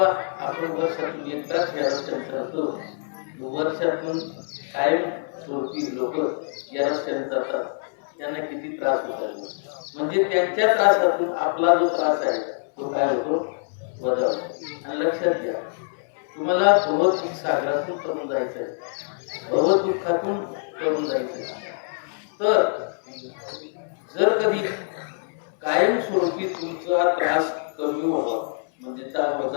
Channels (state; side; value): silent; right; 62 dB below the other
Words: आपण वर्षातून एकदाच या रस्त्याने चालतो. वर्षातून कायम स्वरूपी लोक या रस्त्याने जातात, त्यांना किती त्रास होतात. म्हणजे त्यांच्या त्रासातून आपला जो त्रास आहे तो काय होतो, वजा होतो. आणि लक्षात घ्या, तुम्हाला भवदुःख सागरातून करून जायचं आहे, भवदुःखातून करून जायचं आहे. तर जर कधी कायमस्वरूपी तुमचा त्रास कमी व्हावा म्हणजे